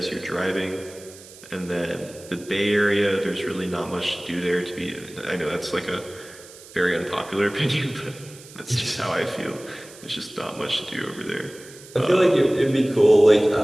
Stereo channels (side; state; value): right; noise; hiss, 20 dB below the sound